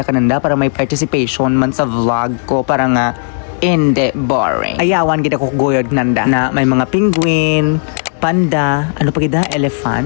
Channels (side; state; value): right; silent; 63 dB below the other